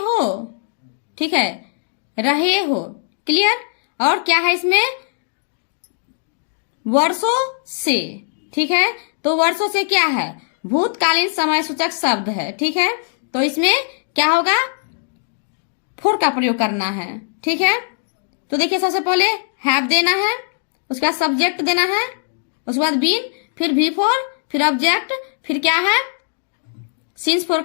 ठीक है, रहे हो, क्लियर। और क्या है इसमें, वर्षों से, ठीक है। तो वर्षों से क्या है, भूतकालीन समय सूचक शब्द है, ठीक है। तो इसमें क्या होगा, फोर का प्रयोग करना है, ठीक है। तो देखिए सबसे पहले हैव देना है, उसका सब्जेक्ट देना है, उसके बाद बीन, फिर V4, फिर ऑब्जेक्ट, फिर क्या है, सिंस फोर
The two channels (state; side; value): silent; right; digital silence